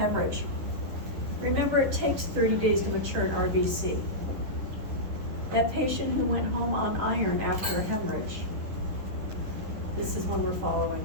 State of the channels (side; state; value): left; late; 10 ms